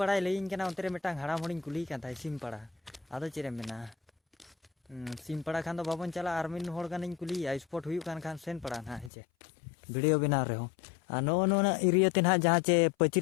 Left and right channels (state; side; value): drops out; right; at 9.1 s